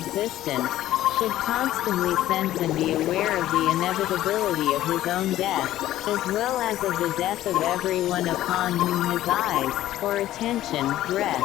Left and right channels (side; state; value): right; quieter; 13.9 dB